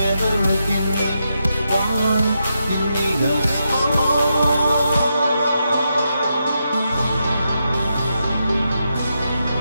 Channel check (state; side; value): inverted; both; correlation -0.84